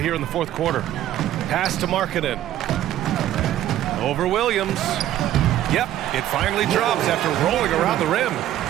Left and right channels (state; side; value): quieter; left; 12.7 dB